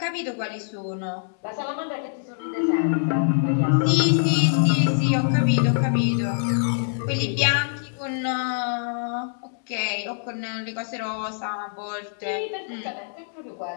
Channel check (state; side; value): silent; right; digital silence